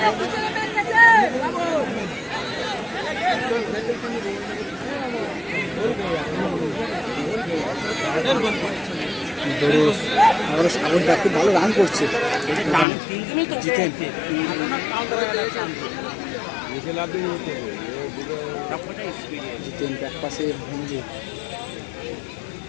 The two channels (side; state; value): right; drops out; at 12.9 s